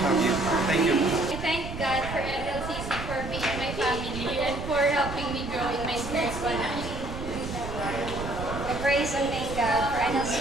have you. Thank you. I thank God for NLCC for being my family and for helping me grow in my spiritual life. I praise and thank God for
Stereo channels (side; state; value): right; noise; rumble, 8 dB below the sound